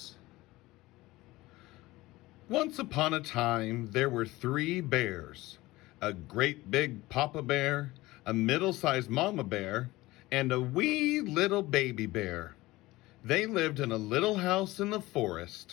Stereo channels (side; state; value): right; quieter; 19.1 dB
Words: Once upon a time, there were three bears. A great big papa bear, a middle-sized mama bear, and a wee little baby bear. They lived in a little house in the